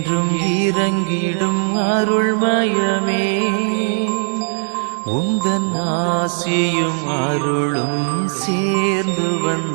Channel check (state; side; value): silent; left; 66 dB below the other